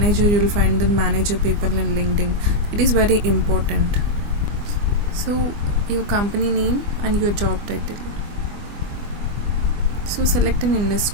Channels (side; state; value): left; late; 24 ms